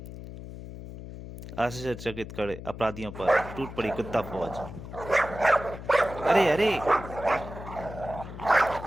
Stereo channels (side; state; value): left; noise; hum, 11 dB below the sound